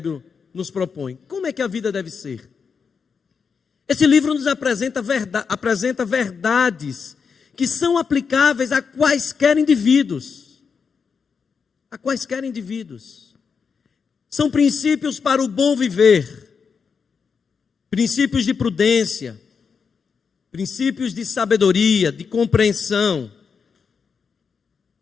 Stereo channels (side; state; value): right; quieter; 5.9 dB